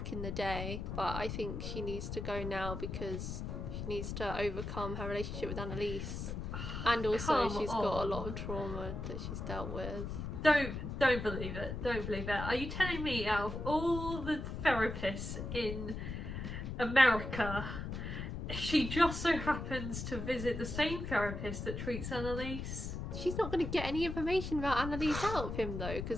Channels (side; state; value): left; noise; rumble, 5 dB below the sound